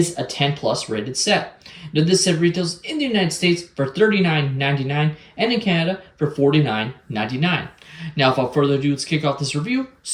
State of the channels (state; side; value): identical; both; correlation 1.00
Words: a 10 plus rated set. Now this set retails in the United States for $39.99 and in Canada for $49.99. Now without further ado, let's kick off this review